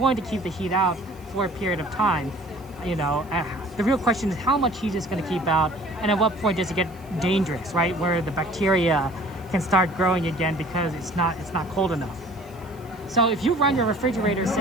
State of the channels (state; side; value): noise; right; hiss, 27 dB below the sound